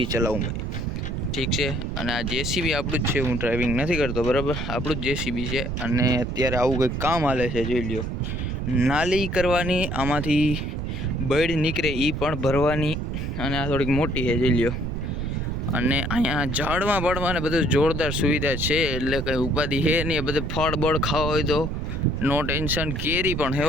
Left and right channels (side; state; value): right; noise; rumble, 3 dB below the sound